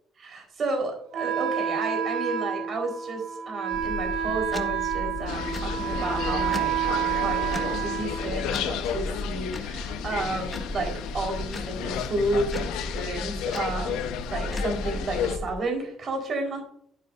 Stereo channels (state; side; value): normal; both; correlation 0.52